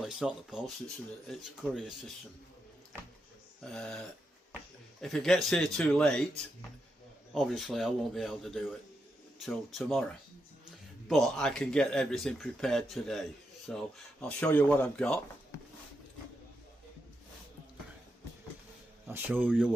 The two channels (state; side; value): normal; both; correlation 0.85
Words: it's not the post, it's a courier system. If it gets here too late, obviously I won't be able to do it till tomorrow, but I can get everything prepared today. So I'll show you what I've got. I'll show you